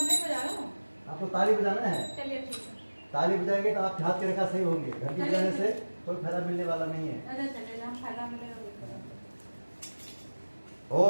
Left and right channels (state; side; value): inverted; both; correlation -1.00